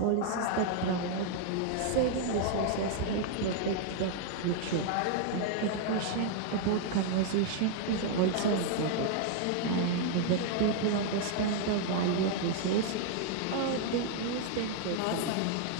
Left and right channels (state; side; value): different; both; correlation 0.00